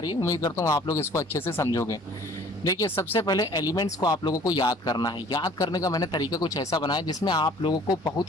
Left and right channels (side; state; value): both; normal; correlation 0.52